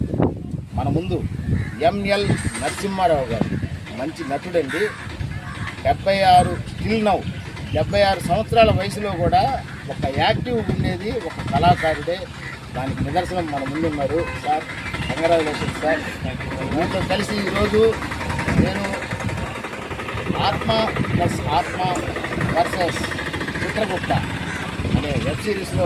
మన ముందు ఎంఎల్ నరసింహారావు గారు మంచి నటుడండి. 76 స్టిల్ నౌ 76 సంవత్సరాల వయసులో కూడా ఒక యాక్టివ్ ఉండేది ఒక కళాకారుడే. దానికి నిదర్శనం మన ముందున్నారు. Sir congratulations sir. మీతో కలిసి ఈరోజు నేను ఆత్మ ప్లస్ ఆత్మ వర్సెస్ చిత్రగుప్త అనే వెబ్ సిరీస్లో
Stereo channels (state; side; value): identical; both; correlation 1.00